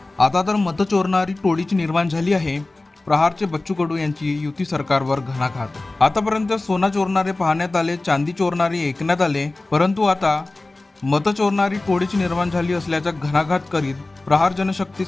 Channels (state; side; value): quieter; right; 3.0 dB